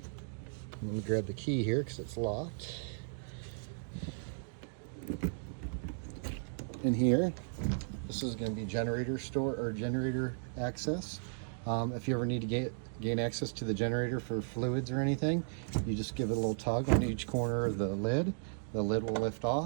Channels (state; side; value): silent; left; digital silence